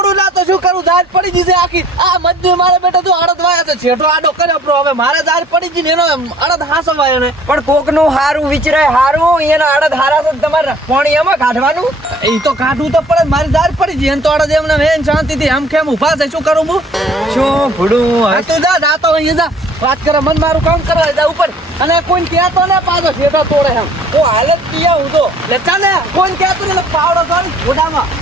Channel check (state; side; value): normal; both; correlation 0.53